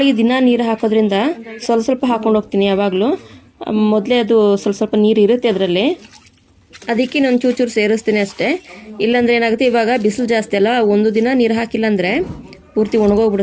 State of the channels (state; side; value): identical; both; correlation 1.00